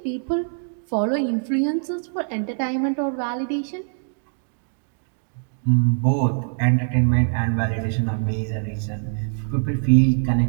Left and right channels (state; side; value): silent; left; digital silence